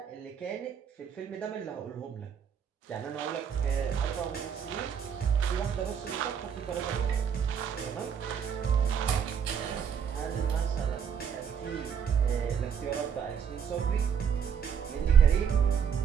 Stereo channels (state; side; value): quieter; left; 7.5 dB